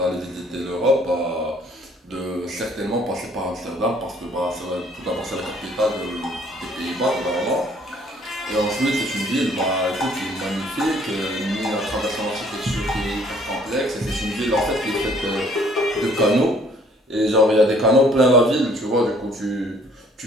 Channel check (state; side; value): normal; both; correlation 0.60